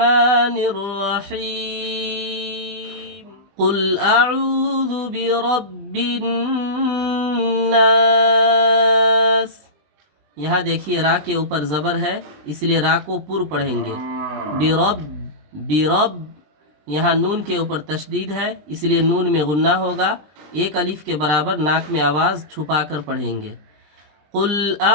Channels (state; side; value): late; left; 20 ms